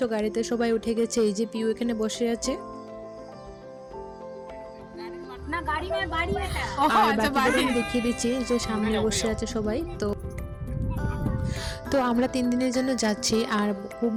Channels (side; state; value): both; identical; correlation 1.00